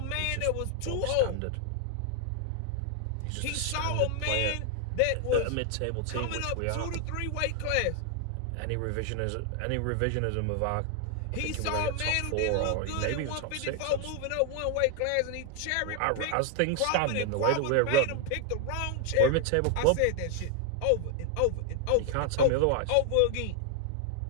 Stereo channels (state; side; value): different; both; correlation 0.00